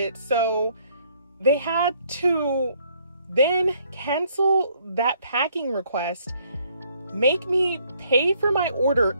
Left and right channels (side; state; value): both; inverted; correlation -0.66